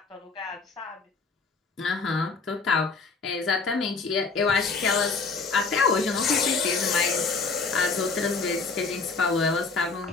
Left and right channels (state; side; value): quieter; right; 4.3 dB